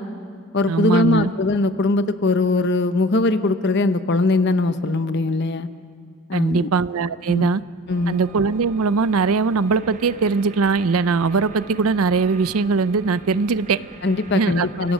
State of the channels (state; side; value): normal; both; correlation 0.40